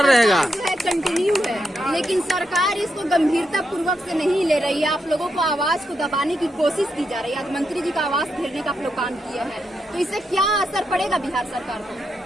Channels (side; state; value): both; normal; correlation 0.83